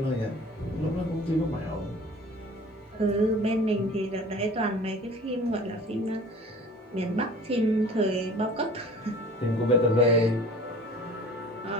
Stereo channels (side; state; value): both; normal; correlation 0.45